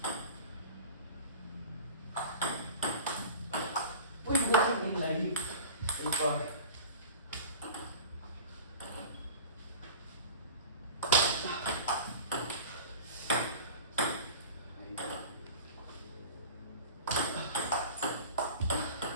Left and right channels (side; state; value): both; inverted; correlation -0.38